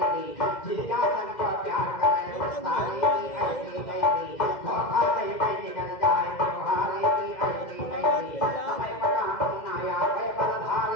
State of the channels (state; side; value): late; right; 2.1 ms